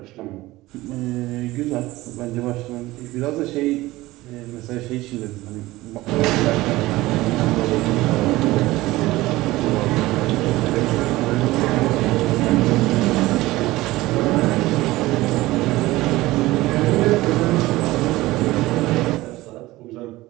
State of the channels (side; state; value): left; quieter; 18.5 dB